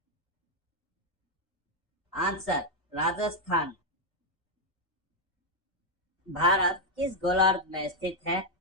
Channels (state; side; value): normal; both; correlation 0.01